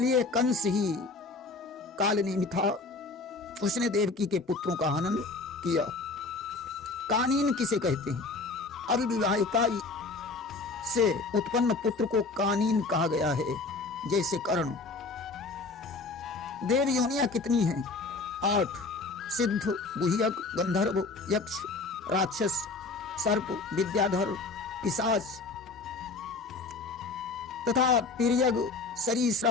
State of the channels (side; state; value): right; quieter; 3.8 dB